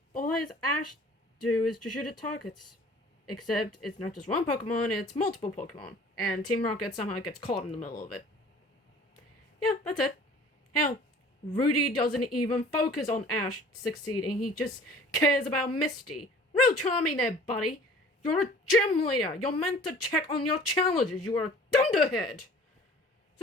all his Ash do is to shoot at targets. Except it's not just one Pokemon, it's multiple Pokemon. And Team Rocket somehow gets caught in the middle of it. Yeah, that's it. Hell, Rudy doesn't even focus on Ash succeeding, he just cares about Misty. Real charming there, buddy. You're a gym leader. You're meant to check on your challenges. You are a thunderhead. So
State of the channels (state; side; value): normal; both; correlation 0.48